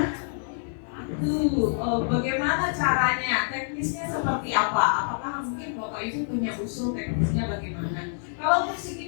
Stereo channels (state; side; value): silent; right; digital silence